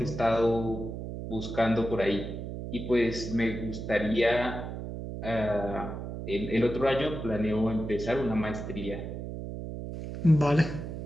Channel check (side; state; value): right; noise; hum, 7 dB below the sound